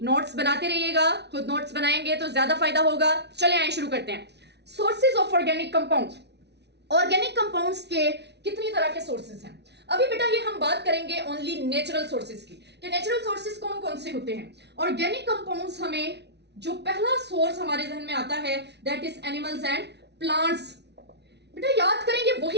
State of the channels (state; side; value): late; left; 0.50 ms